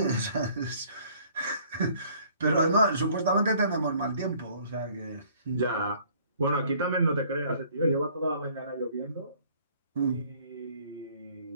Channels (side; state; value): both; inverted; correlation -0.58